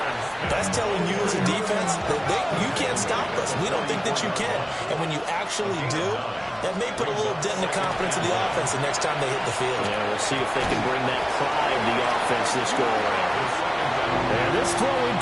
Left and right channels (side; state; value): both; identical; correlation 1.00